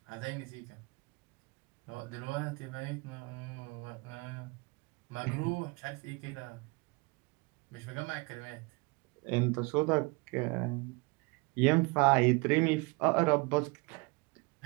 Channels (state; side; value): quieter; left; 28.0 dB